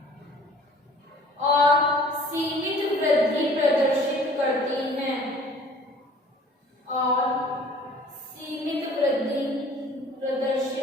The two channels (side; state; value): both; normal; correlation 0.51